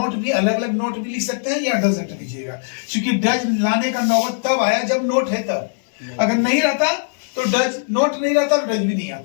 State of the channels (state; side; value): silent; right; digital silence